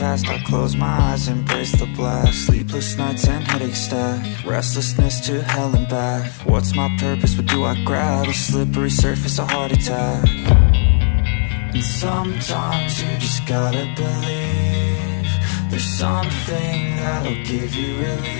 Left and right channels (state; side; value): silent; right; 67 dB below the other